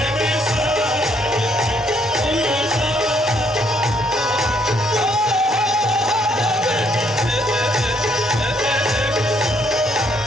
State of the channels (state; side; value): normal; both; correlation 0.69